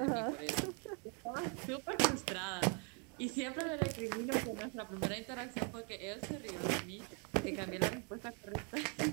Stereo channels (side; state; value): left; quieter; 36.8 dB